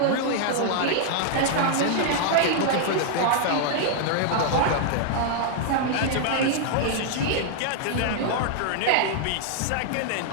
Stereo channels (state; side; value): different; both; correlation 0.00